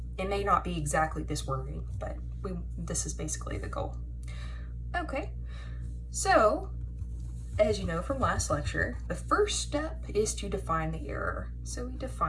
It may not be exactly this wording, but this is basically the goal. Okay, so as you know from last lecture, the first step is to define the error. So we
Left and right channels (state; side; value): identical; both; correlation 1.00